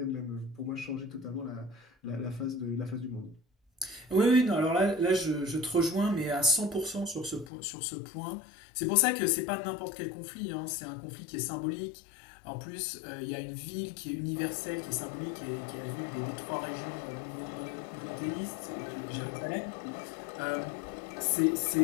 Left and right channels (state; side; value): drops out; right; at 7.5 s